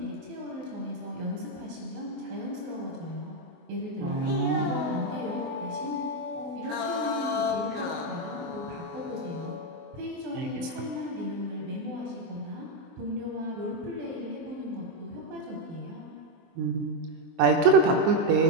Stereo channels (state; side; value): late; left; 24 ms